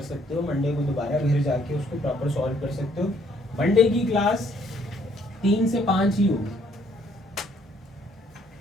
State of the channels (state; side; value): normal; both; correlation 0.65